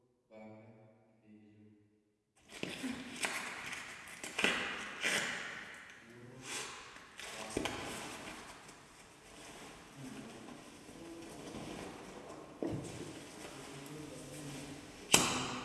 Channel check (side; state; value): both; identical; correlation 1.00